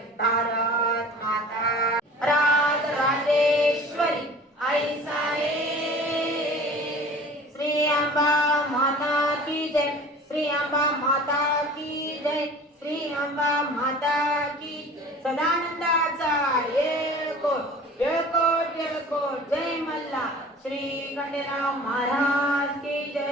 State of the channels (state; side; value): normal; both; correlation 0.43